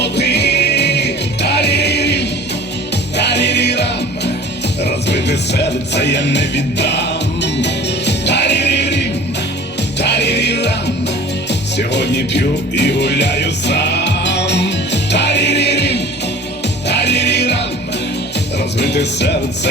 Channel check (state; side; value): normal; both; correlation 0.44